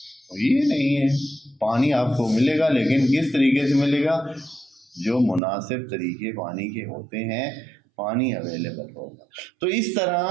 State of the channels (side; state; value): left; drops out; at 5.4 s